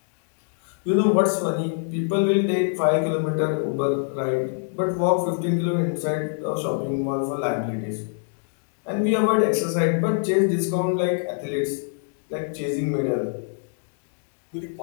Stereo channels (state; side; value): silent; right; 62 dB below the other